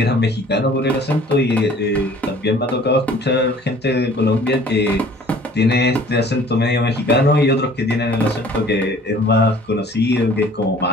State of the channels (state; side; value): normal; both; correlation 0.51